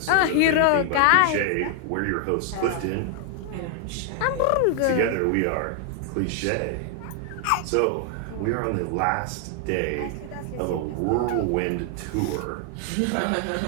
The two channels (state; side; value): different; both; correlation 0.00